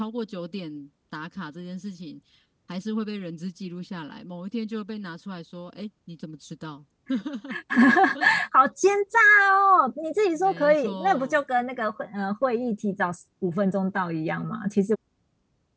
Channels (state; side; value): identical; both; correlation 1.00